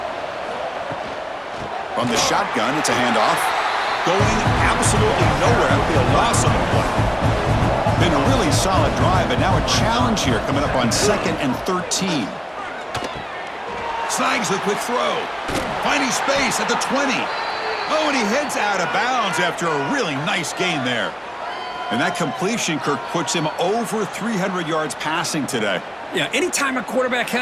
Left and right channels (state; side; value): identical; both; correlation 1.00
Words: From the shotgun, it's a handoff. Going absolutely nowhere. That would be a loss on the play. Been a really solid drive, but now a challenge here coming up on 2nd and 13. Snags the quick throw. Finding space at the 20. Oh, and he heads out of bounds after a really nice gain there. And that completion, Kirk, puts him over 300 yards passing today. Yeah, anytime a quarterback